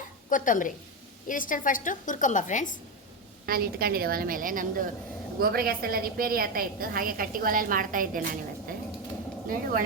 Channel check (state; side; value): normal; both; correlation 0.12